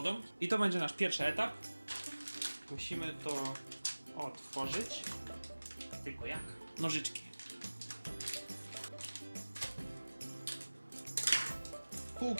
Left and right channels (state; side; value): inverted; both; correlation -1.00